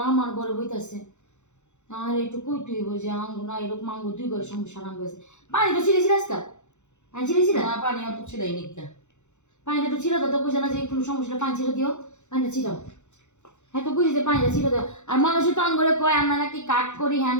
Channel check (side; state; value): right; late; 0.83 ms